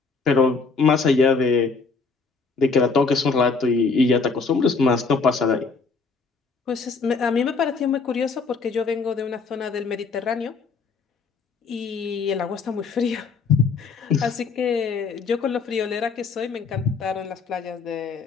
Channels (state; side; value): quieter; right; 4.7 dB